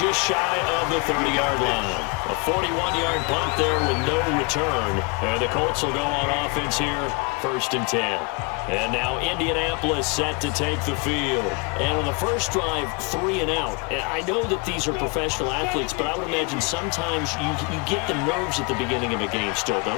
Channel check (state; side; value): quieter; right; 29.4 dB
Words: shy of the 30-yard line. A 41-yard punt there with no return. And the Colts will go on offense here, 1st and 10. And now Indianapolis set to take the field. And on the first drive, 3 and out. And I know that these are professional athletes, but I would imagine sometimes you get the nerves at the beginning of a game still,